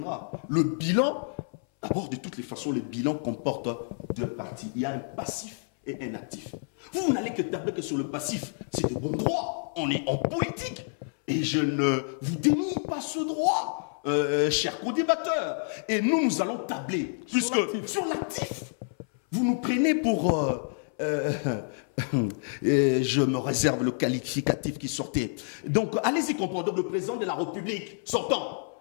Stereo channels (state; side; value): silent; right; 58 dB below the other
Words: Le bilan, d'abord, de toutes les façons, le bilan comporte deux parties. Il y a un passif et un actif. Vous n'allez que tabler que sur le passif. C'est de bon droit. On est en politique. Et je ne vous dénie pas ce droit, cher co-débatteur. Et nous allons tabler sur l'actif. Vous nous prenez pour... je me réserve le qualificatif qui sortait. Donc, allez-y comprendre. Donc, le président de la République sortant.